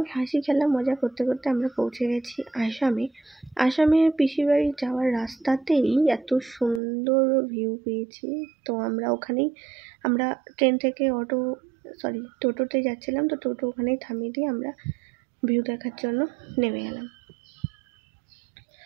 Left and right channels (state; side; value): drops out; left; at 6.8 s